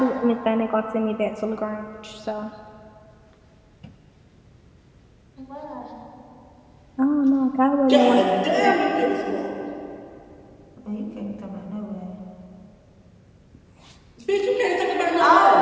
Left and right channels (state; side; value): identical; both; correlation 1.00